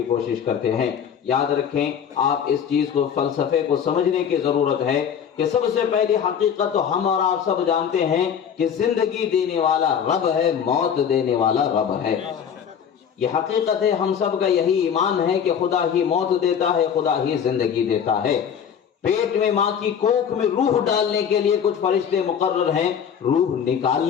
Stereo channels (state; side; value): quieter; right; 8.0 dB